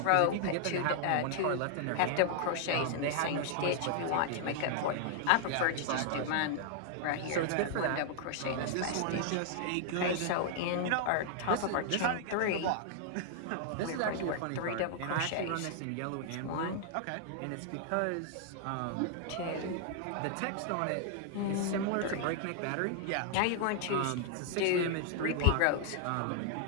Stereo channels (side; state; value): both; different; correlation 0.00